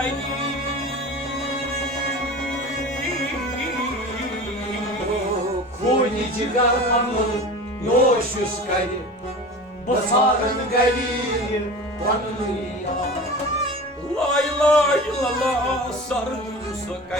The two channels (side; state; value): both; normal; correlation 0.35